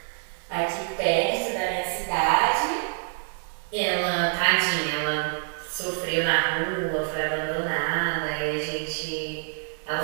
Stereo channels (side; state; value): left; silent; 61 dB below the other